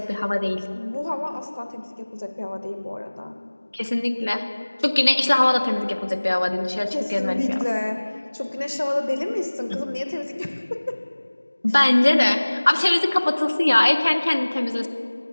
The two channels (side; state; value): both; inverted; correlation -1.00